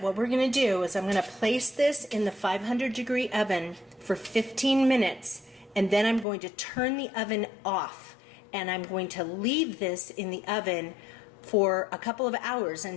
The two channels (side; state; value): right; drops out; at 6.2 s